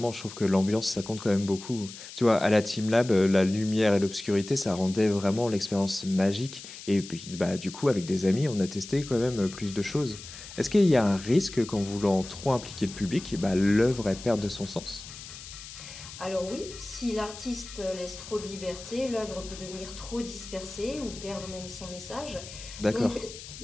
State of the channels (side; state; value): left; noise; hiss, 14 dB below the sound